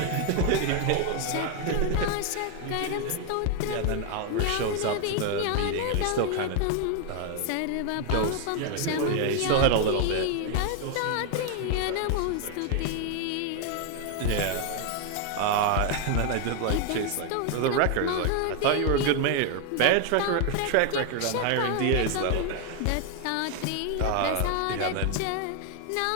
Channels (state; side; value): different; both; correlation 0.00